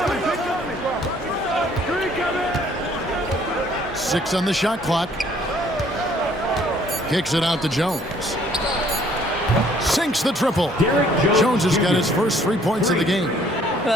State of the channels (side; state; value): both; normal; correlation 0.61